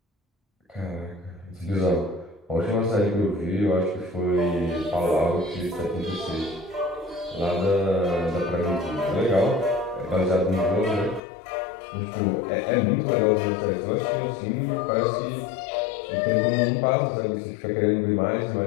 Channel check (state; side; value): drops out; right; at 11.2 s